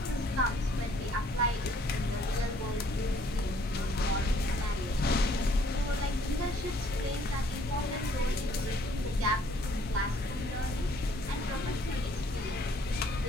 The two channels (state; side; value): normal; both; correlation 0.62